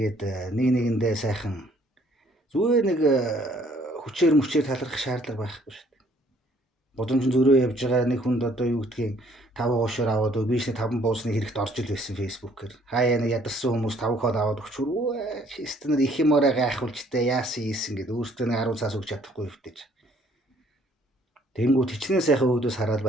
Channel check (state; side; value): normal; both; correlation 0.62